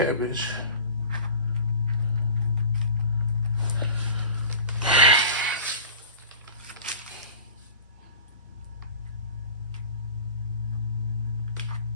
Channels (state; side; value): inverted; both; correlation -0.38